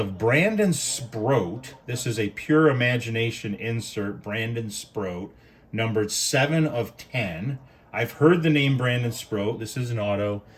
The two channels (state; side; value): identical; both; correlation 1.00